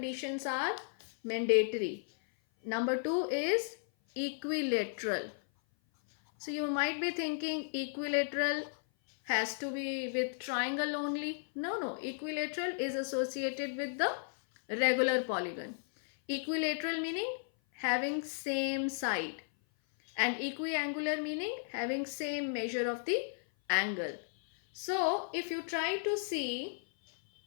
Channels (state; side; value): silent; right; 55 dB below the other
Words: are mandatory. Number two is equilateral. So you might be thinking equilateral has to be with triangle only. No, equilateral is associated with the regular polygon. Equilateral meaning having same side, and equiangular meaning having same measure of the angle. So if you try to see